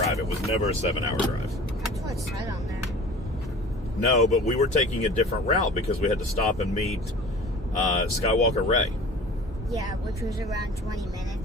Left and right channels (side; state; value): both; normal; correlation 0.43